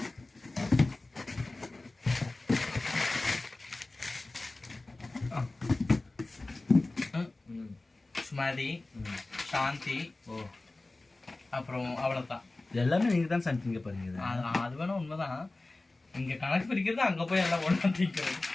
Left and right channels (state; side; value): quieter; right; 3.0 dB